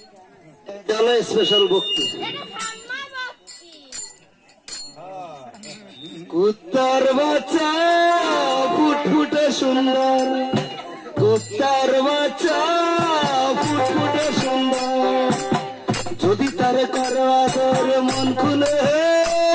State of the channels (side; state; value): both; identical; correlation 1.00